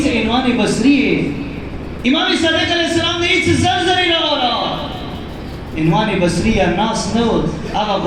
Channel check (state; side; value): identical; both; correlation 1.00